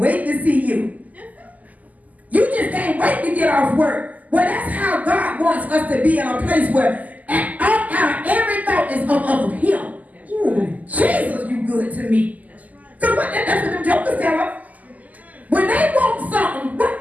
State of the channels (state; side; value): late; left; 0.078 ms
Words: to see you. You just can't wait to get off work. Well, that's how God wants us to be in a place where every thought is of him. Ooh, Jesus, you good to me. Because that's what them jokers tell us. When they want something,